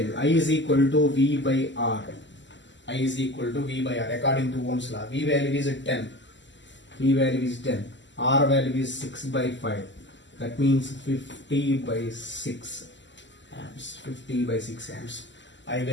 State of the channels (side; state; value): right; late; 0.54 ms